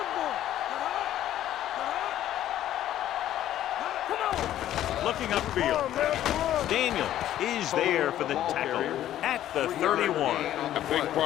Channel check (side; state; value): right; quieter; 12.4 dB